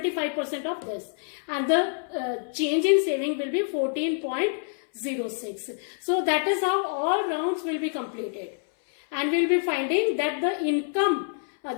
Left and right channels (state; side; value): silent; right; 60 dB below the other